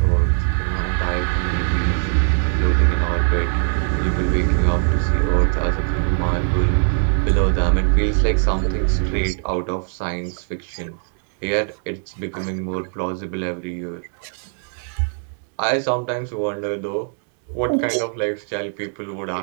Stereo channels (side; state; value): left; silent; 57 dB below the other